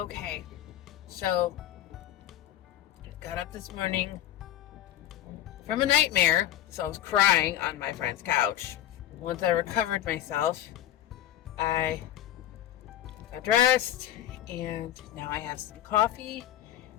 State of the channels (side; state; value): right; quieter; 12.5 dB